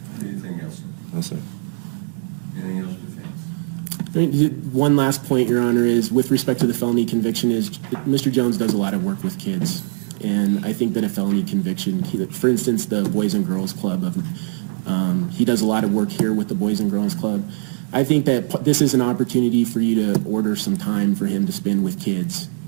Anything else? No, sir. Anything else, defense? I mean, one last point, Your Honor, is with respect to the felony conviction is Mr. Jones does a lot of work with kids. And I think that a felony conviction, for instance, the Boys and Girls Club, he does a lot of work here with the Boys and Girls Club. I think that this is an opportunity for you to order some time for him to spend with kids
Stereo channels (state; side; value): silent; left; 56 dB below the other